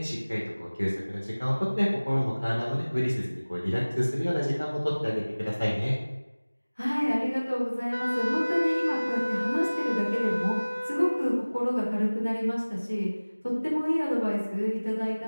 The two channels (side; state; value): both; inverted; correlation -1.00